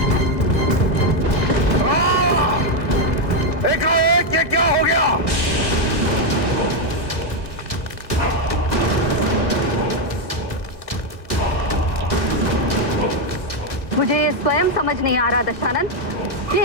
एकाएक ये क्या हो गया? मुझे ये स्वयं समझ नहीं आ रहा दशानन कि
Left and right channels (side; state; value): right; late; 1.7 ms